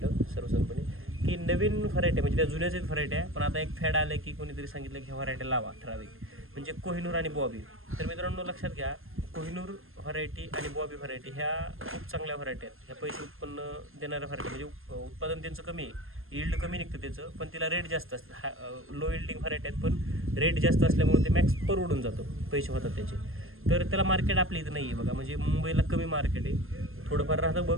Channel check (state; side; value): late; left; 0.60 ms